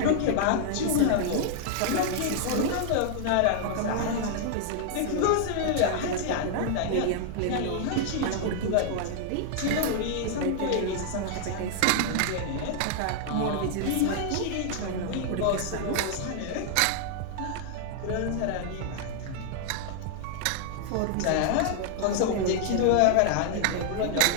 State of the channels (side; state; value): both; different; correlation -0.01